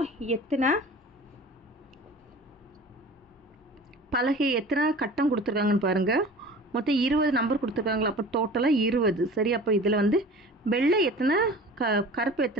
எத்தனை பலகை எத்தனை கட்டம் கொடுத்துருக்காங்கன்னு பாருங்கள். மொத்தம் 20 நம்பர் கொடுத்துருக்காங்களா? அப்போ டோட்டலாக 20. சரி, அப்போ இதில் வந்து வெள்ளை எத்தனை கருப்பு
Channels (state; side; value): normal; both; correlation 0.41